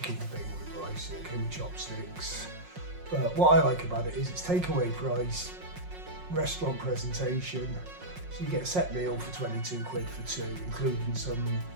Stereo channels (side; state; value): left; late; 5.5 ms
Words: thing with rice, it came with chopsticks. But what I like about it is it's takeaway price, restaurant presentation. So you get a set meal for 22 quid for 2, including some